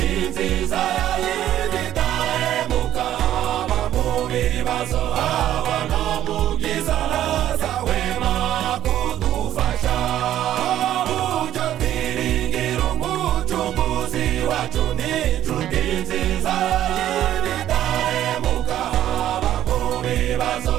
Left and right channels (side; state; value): left; quieter; 12.1 dB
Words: nziza y'ibitahemuka haba mu bibazo haba no mu byiza ntazahwema kudufasha uburyo twiringira umucunguzi wacu n'inshuti nziza y'ibitahemuka haba mu bibazo